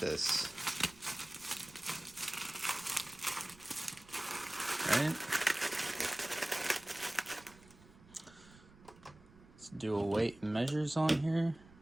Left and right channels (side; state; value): right; noise; rumble, 23 dB below the sound